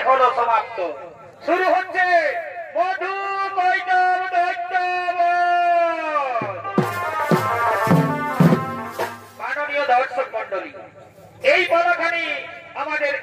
হলো সমাপ্ত। শুরু হচ্ছে মধু কৈতব দৈত্য। মাননীয় দর্শক মন্ডলী, এই পালাখানি আমাদের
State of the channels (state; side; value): identical; both; correlation 1.00